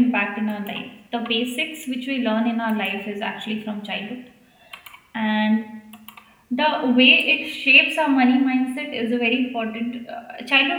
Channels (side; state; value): both; identical; correlation 1.00